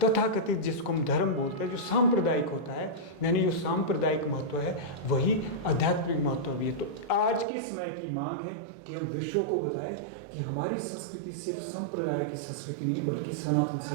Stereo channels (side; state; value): left; drops out; at 7.5 s